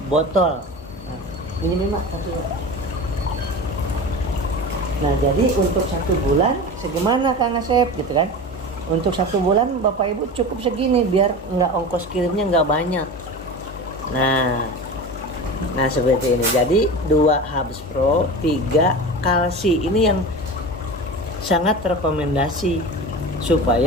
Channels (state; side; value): normal; both; correlation 0.30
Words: botol. Nah, ini memang 1. Nah, jadi untuk 1 bulan segimana Kang Asep gitu kan? Untuk 1 bulan Bapak Ibu cukup segini biar nggak ongkos kirimnya nggak banyak. Nah seperti ini. Jadi 2 Habis Pro, 3 kalsi. Ini yang sangat rekomendasi